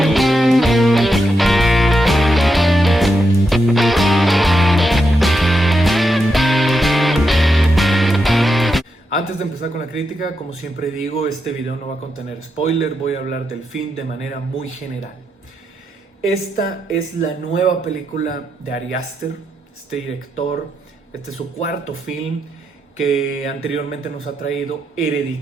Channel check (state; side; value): normal; both; correlation 0.84